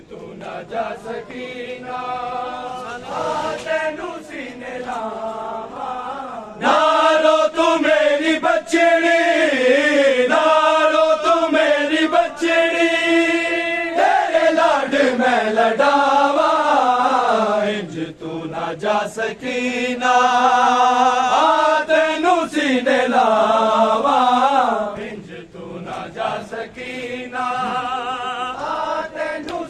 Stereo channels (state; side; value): identical; both; correlation 1.00